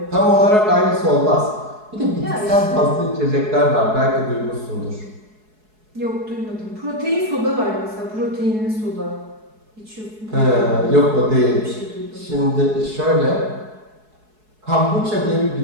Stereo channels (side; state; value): left; late; 4.7 ms